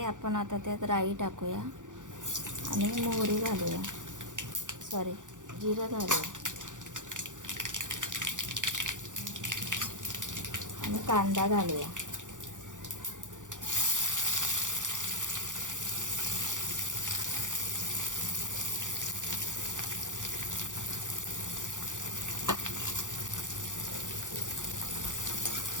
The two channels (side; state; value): left; late; 0.87 ms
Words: आपण आता त्यात राई टाकूया आणि मोहरी घालूया, जिरं घालूया आणि कांदा घालूया.